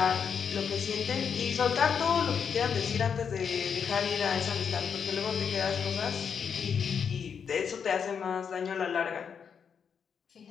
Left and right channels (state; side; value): quieter; right; 6.9 dB